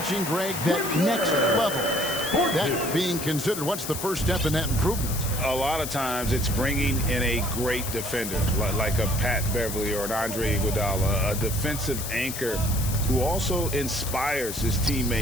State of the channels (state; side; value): noise; left; hiss, 7 dB below the sound